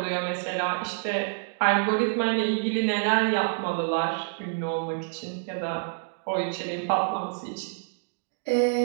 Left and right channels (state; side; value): silent; left; digital silence